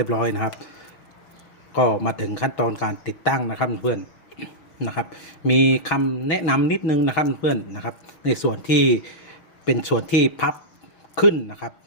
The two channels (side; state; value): right; late; 6.2 ms